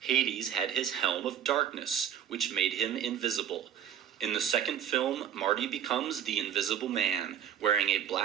had his helm of darkness, which made him invisible. In the second film, Marty becomes the Invisible Man, wearing a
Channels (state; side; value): quieter; left; 9.3 dB